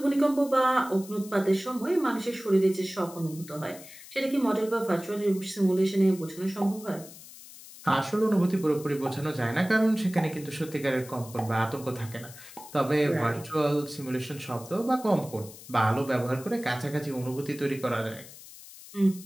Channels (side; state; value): left; noise; hiss, 17 dB below the sound